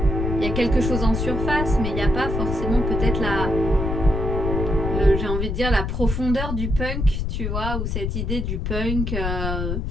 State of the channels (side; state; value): left; noise; rumble, 2 dB below the sound